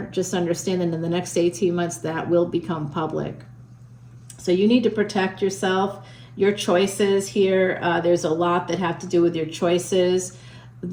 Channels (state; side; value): identical; both; correlation 1.00